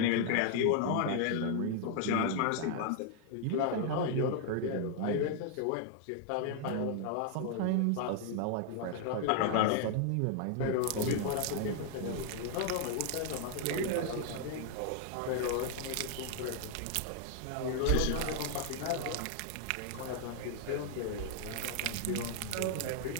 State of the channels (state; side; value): different; both; correlation 0.00